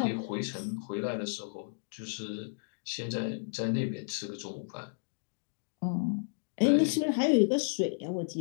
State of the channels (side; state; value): right; silent; digital silence